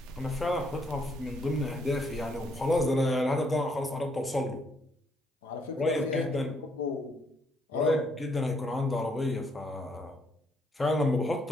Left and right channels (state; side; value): normal; both; correlation 0.71